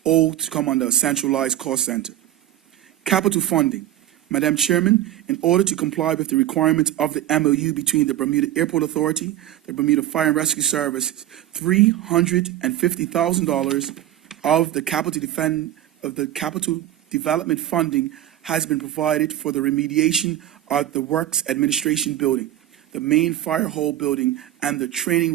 all to come under a centralized cost center. Capital funding. Madam Chairman, in order to comply with the requirements of the MOU between the Bermuda Airport Authority, the Bermuda Fire and Rescue Services, $350,000 of the capital development funding has been provided for the remediation of the Works Administration Building, the main fire hall building, and the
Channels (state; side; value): quieter; left; 12.7 dB